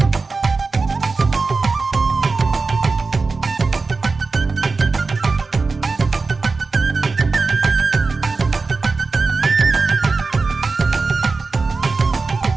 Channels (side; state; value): left; quieter; 4.1 dB